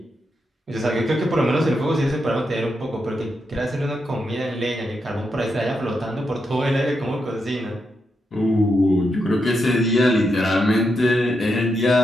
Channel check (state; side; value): normal; both; correlation 0.83